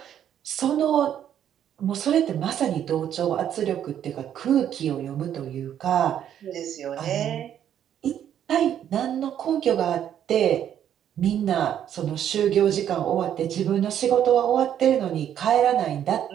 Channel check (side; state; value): left; quieter; 10.0 dB